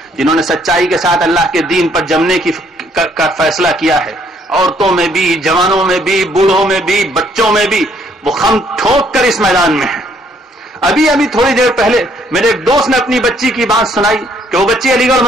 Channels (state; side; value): normal; both; correlation 0.66